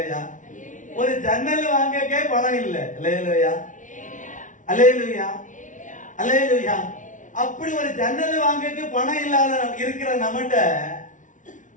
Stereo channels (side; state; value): right; late; 0.37 ms